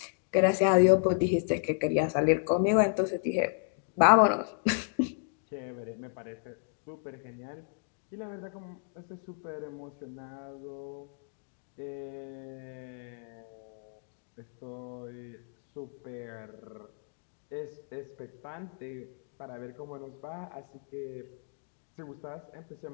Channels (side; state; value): right; silent; digital silence